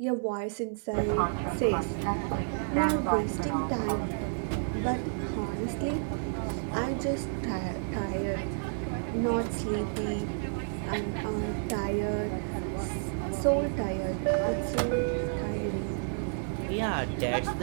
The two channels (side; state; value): left; silent; 57 dB below the other